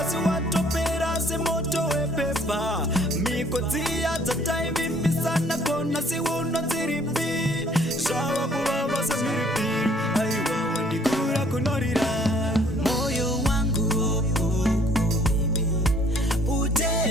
asiwatopera se moto wepepa. Mikotia za taivi misana kona si uno ziripi. Shawa kubaba sa miripi, aiwa wandikura kunorira. Moyo wangu oh, oh, oh, baby.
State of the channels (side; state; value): both; normal; correlation 0.60